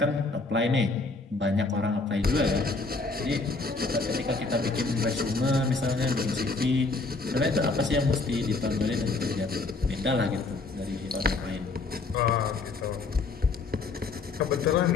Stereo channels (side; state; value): right; quieter; 3.7 dB